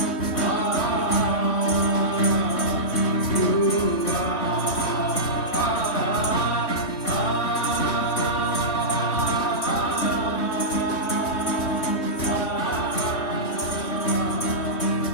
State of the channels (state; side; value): late; right; 3.1 ms